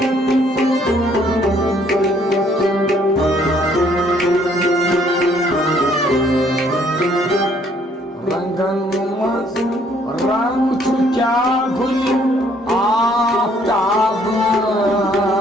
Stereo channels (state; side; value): normal; both; correlation 0.64